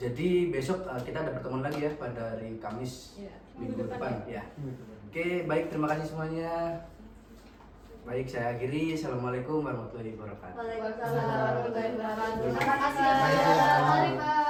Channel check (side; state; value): both; identical; correlation 1.00